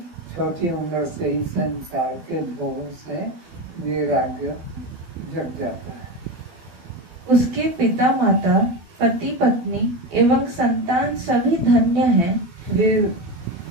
छोटी उम्र से ही संसार के भोगों से वैराग्य जग जाता है। उसके पिता माता, पति पत्नी एवं संतान सभी धन्य हैं। वे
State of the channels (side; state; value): left; late; 12 ms